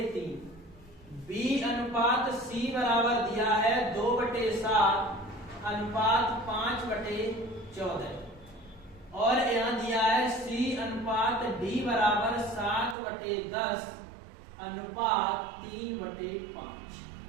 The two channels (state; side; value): drops out; left; at 13.0 s